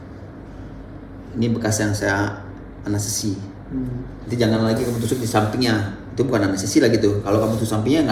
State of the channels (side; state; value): both; identical; correlation 1.00